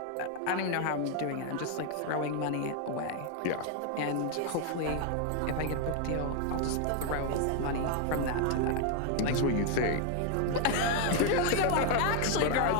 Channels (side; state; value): both; different; correlation 0.00